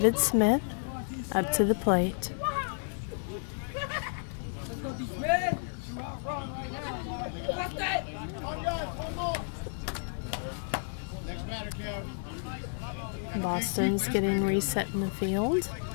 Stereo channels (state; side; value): silent; right; digital silence